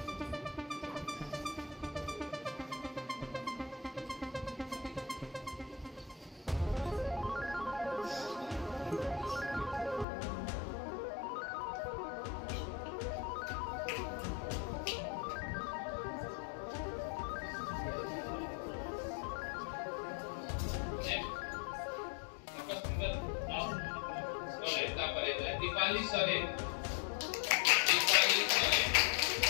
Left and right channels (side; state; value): right; drops out; at 10.1 s